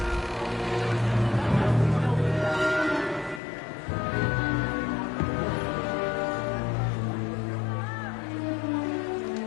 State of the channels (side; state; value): right; drops out; at 3.4 s